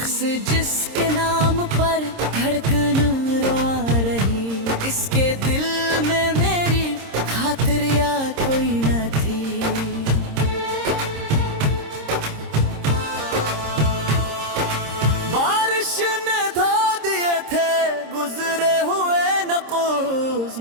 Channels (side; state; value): left; late; 26 ms